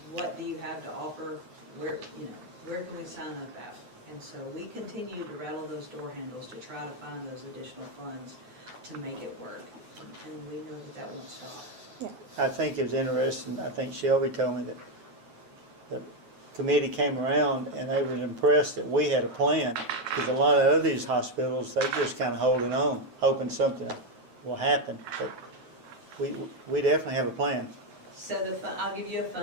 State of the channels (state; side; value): late; left; 9.4 ms